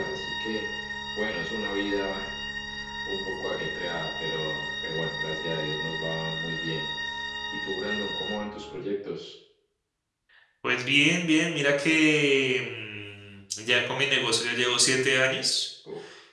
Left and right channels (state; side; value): identical; both; correlation 1.00